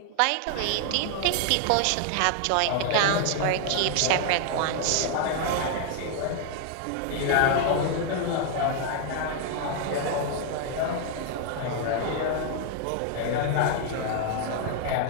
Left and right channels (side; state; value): both; different; correlation 0.00